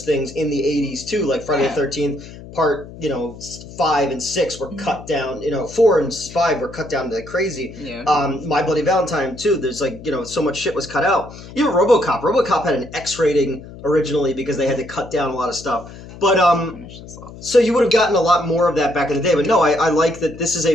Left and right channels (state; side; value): noise; left; hum, 16 dB below the sound